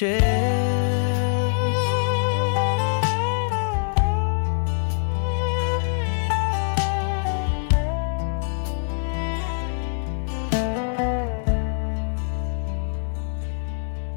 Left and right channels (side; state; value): right; silent; 63 dB below the other